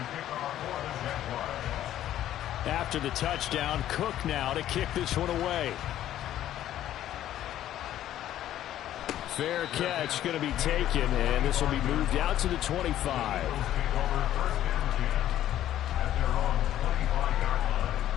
After the touchdown, Cook now to kick this one away. Fair catch going to be taken, and this will be moved out to the 25.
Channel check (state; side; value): quieter; right; 12.3 dB